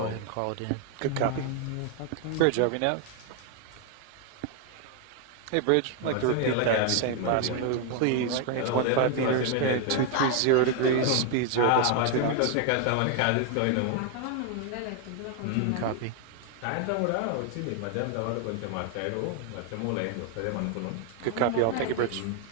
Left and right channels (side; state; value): both; different; correlation 0.00